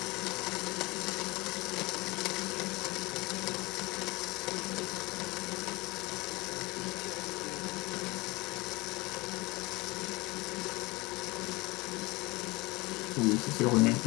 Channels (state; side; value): quieter; right; 23.3 dB